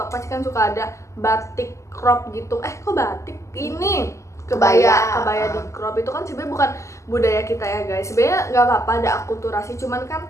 pasti kan suka ada batik crop gitu. Kok batik? Ini kebaya di crop itu kan sebenarnya bukan budaya kita ya guys. Sebenarnya nggak apa-apa ada akulturasi, cuman kan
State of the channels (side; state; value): right; late; 0.14 ms